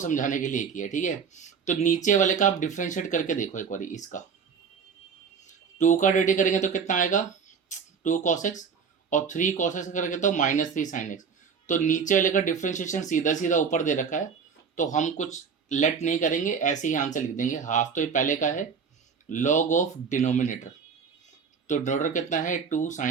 के लिए किया। ठीक है, तो नीचे वाले का आप डिफ्रेंशिएट करके देखो एक बार, इसका 2 का डेरिवेटिव करेंगे तो कितना आएगा 2 cos x, और 3 cos x करेंगे तो माइनस 3 sin x। तो नीचे वाले का डिफ्रेंशिएशन सीधा सीधा ऊपर दे रखा है, तो हम कुछ लेट नहीं करेंगे, ऐसे ही आंसर लिख देंगे। हाफ तो ये पहले का है, लॉग ऑफ डिनोमिनेटर, तो डिनोमिनेटर कितना है 2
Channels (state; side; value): quieter; left; 6.1 dB